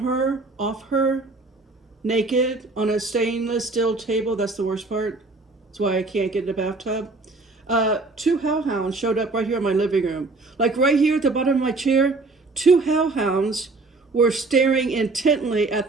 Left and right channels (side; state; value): left; quieter; 3.5 dB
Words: off her, naked, on a stainless steel table. That's the worst part. That's why I can't get in the bathtub. 2 hellhounds showed up right here in my living room. Like right here at the bottom of my chair, 2 hellhounds were staring intently at